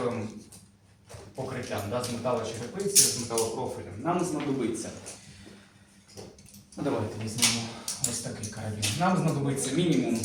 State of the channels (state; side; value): identical; both; correlation 1.00